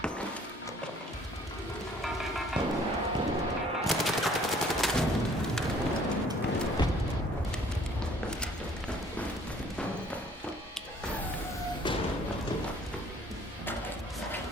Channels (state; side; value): normal; both; correlation 0.57